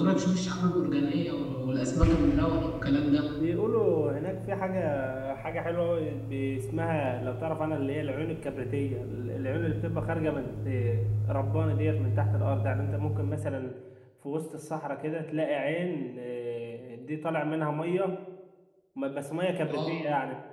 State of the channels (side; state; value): both; identical; correlation 1.00